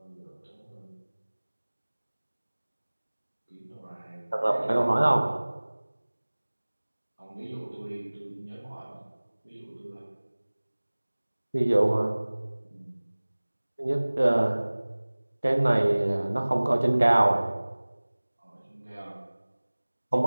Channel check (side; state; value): both; inverted; correlation -1.00